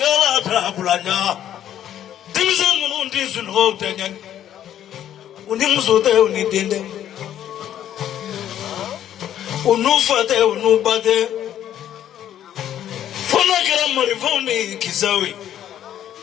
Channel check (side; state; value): right; quieter; 10.9 dB